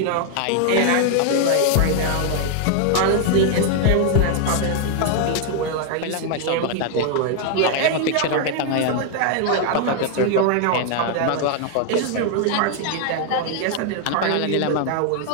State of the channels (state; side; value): different; both; correlation 0.00